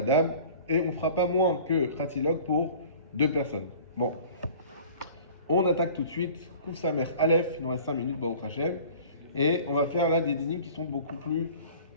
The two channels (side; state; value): both; inverted; correlation -0.46